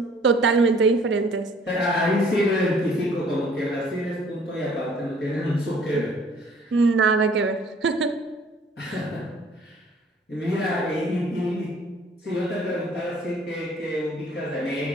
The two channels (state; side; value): normal; both; correlation 0.56